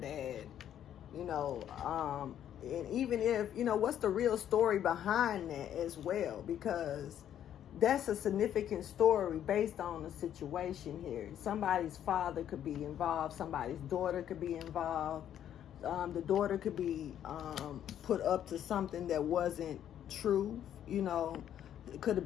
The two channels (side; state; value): right; quieter; 10.4 dB